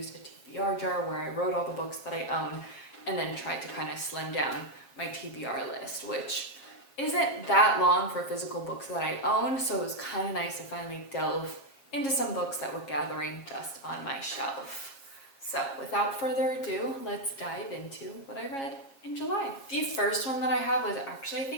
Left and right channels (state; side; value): late; right; 7.3 ms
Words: a TBR jar where I wrote all the books that I own and then tried to kind of slim down my TBR list, which isn't that long for physical books that I own, so it was kind of nice to finally delve into some books that were gathering dust on my shelf. So without further ado, let's dive into what I read in July. The first one that I have was actually, I